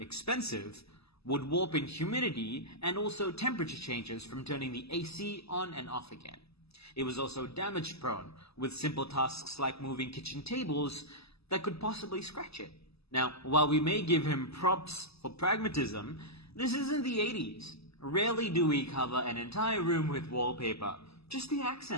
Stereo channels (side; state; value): right; late; 0.78 ms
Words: would warp in humidity, and also temperature changes from turning the AC on and off again. It was also damage-prone, with simple tasks like moving kitchen tables that could possibly scratch it. Now, while we may give him props for pragmatism, this isn't the 80s. Rarely do we cover an entire room with wallpaper, just the